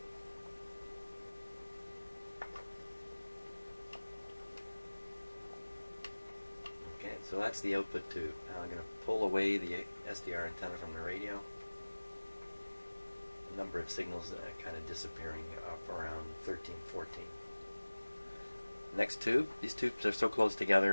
Okay, so that's the output tube. Now I'm going to pull away the SDR antenna from the radio. A number of signals kind of disappearing up around 13, 14. Next tube. These tubes are so close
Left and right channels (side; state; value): both; inverted; correlation -1.00